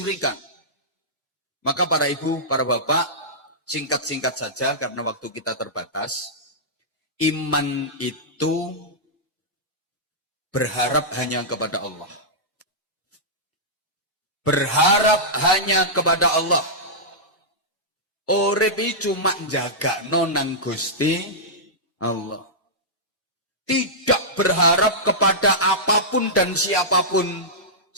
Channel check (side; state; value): both; normal; correlation -0.13